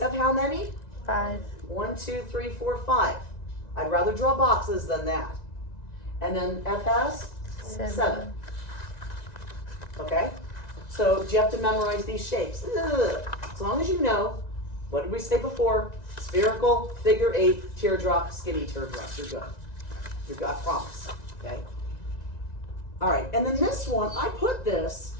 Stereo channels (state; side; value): late; right; 1.9 ms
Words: how many? 5. 1, 2, 3, 4, 5. I'd rather draw boxes than that. And then F has? 7. Okay? So do you have to memorize these shapes? Ugh. As long as you know, what did we say before? Spherical, figure 8, teardrop, skinny teardrop. You're good. You're good, I promise. Okay? All right, and then this one, I put this